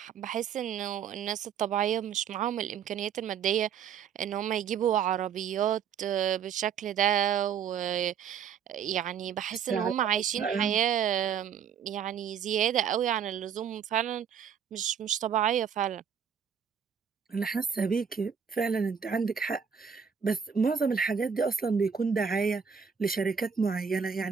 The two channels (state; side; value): quieter; left; 7.3 dB